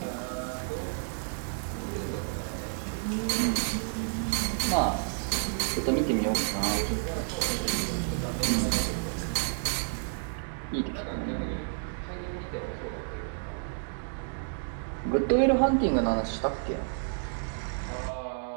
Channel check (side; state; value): left; silent; digital silence